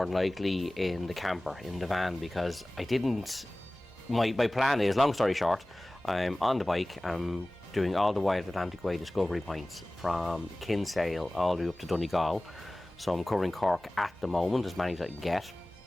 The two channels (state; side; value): normal; both; correlation 0.98